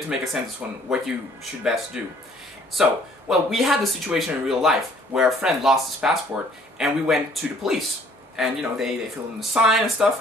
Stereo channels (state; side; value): normal; both; correlation 0.58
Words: to make a sentence on what you should best do. So, well, we had the situation in real life where a friend lost his passport, and we went to the police. And, you know, they filled in the sign and stuff,